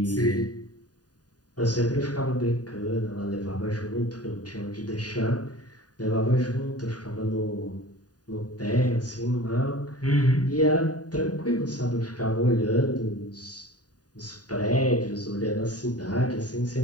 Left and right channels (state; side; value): late; right; 0.68 ms